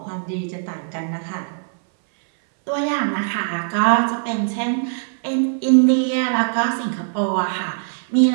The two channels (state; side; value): silent; left; 61 dB below the other